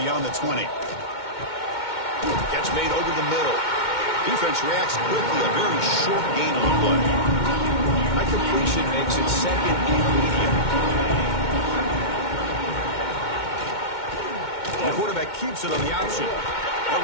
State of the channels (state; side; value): late; right; 2.2 ms